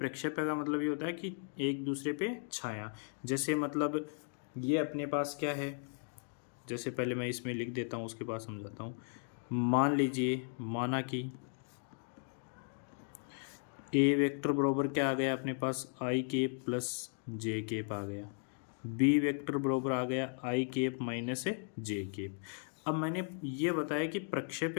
का मतलब ये होता है कि एक दूसरे पे छाया, जैसे मतलब ये अपने पास क्या है, जैसे पहले मैं इसमें लिख देता हूँ उसके बाद समझाता हूँ। मान लीजिए, माना कि ए वेक्टर बराबर क्या आ गया अपने पास आई केप प्लस जे केप आ गया, बी वेक्टर बराबर आ गया आई केप माइनस जे केप। अब मैंने ये बताया कि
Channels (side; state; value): right; silent; 54 dB below the other